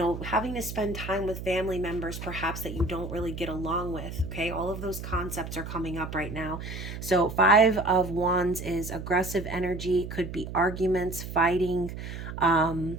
having to spend time with family members perhaps that you don't really get along with. Okay. All of those concepts are coming up right now. So, Five of Wands is aggressive energy, could be arguments, fighting,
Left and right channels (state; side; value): noise; right; hum, 8 dB below the sound